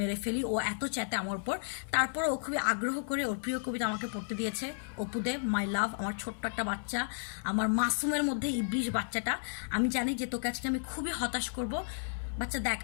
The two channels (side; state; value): right; silent; 56 dB below the other